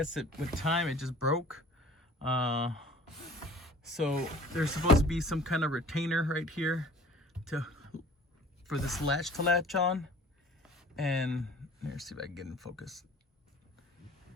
with time it just broke. So there's supposed to be some kind of retainer right here for this latch to latch on. And let's see if I can get in focus.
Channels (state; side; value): normal; both; correlation 0.48